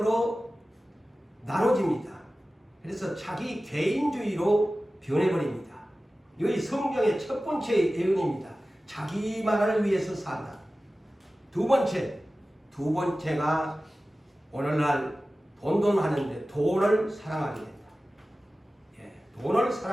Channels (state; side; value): normal; both; correlation 0.96